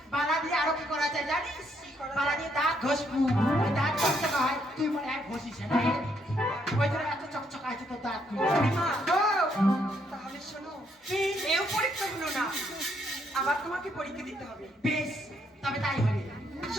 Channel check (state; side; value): normal; both; correlation 0.73